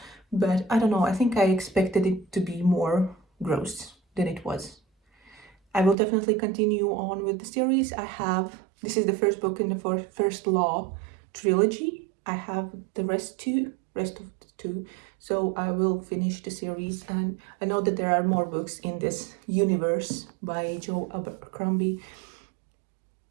but I don't know. I think I expected it to be more gross than it was. I will definitely continue on with the series. This is the first book in the first Law trilogy. I have the rest of the two, so I will finish the series. And I know that there are more books in this universe by Joe Abercrombie,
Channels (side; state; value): left; drops out; at 6.0 s